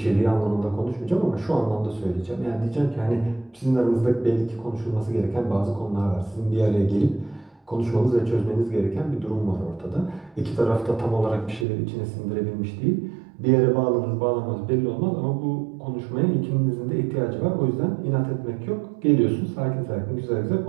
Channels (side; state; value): left; drops out; at 11.7 s